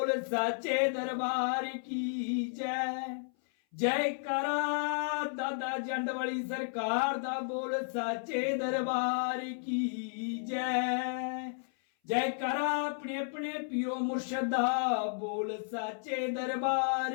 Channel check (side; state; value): right; silent; 56 dB below the other